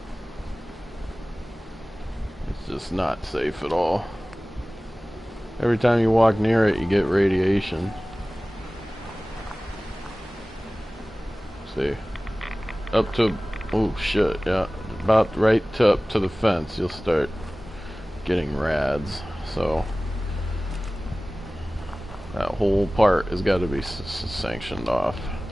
It's just not safe at all. Every time you walk near it, you get radiation. See, up to, oh shit, yeah, about right to up to the fence, you'll start getting rads. So that whole part has got to be sanctioned off.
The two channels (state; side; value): normal; both; correlation 0.98